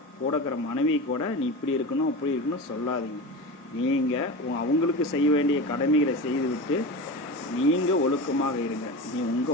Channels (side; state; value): both; normal; correlation 0.27